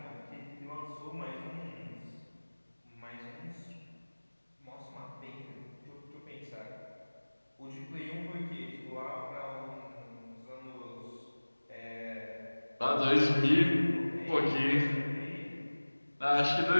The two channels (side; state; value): both; inverted; correlation -1.00